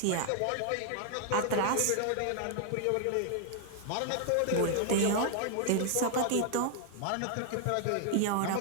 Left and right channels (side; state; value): both; different; correlation 0.00